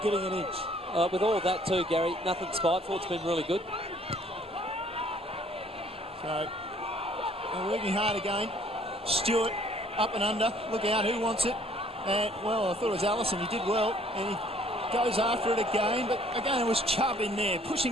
getting an inch. With all of that too, Gary, nothing spiteful. It's been really good. So, they're working hard again. Stewart, up and under. Look out, who wants it? Well, I thought it was Allison. He did well, and he goes after it again, but again it was Chubb in there,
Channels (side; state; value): both; normal; correlation 0.59